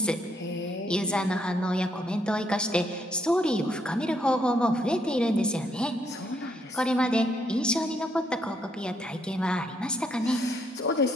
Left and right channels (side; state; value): both; normal; correlation 0.73